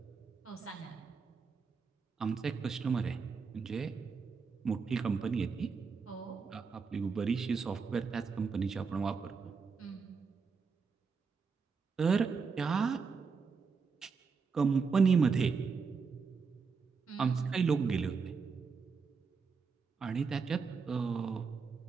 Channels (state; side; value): quieter; left; 5.2 dB